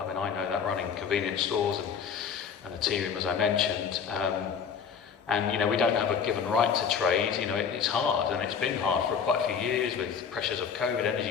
I mean, I know that running convenience stores and a tea room, as I mentioned. And we don't have a given right to trade. It's hard, and it's been hard for quite a few years with pressures of COVID,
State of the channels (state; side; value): quieter; right; 6.8 dB